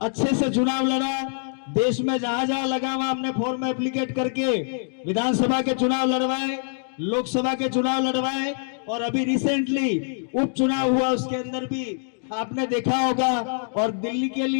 अच्छे से चुनाव लड़ा। देश में जहां जहां लगा वहां हमने फॉर्म एप्लीकेट करके विधानसभा के चुनाव लड़वाए, लोकसभा के चुनाव लड़वाए और अभी रिसेंटली उपचुनाव हुआ, उसके अंदर भी आपने देखा होगा। और दिल्ली के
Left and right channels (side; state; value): right; silent; digital silence